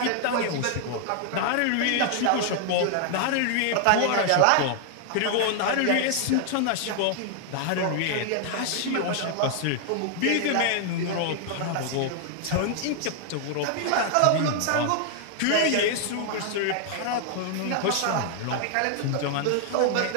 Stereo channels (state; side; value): different; both; correlation 0.00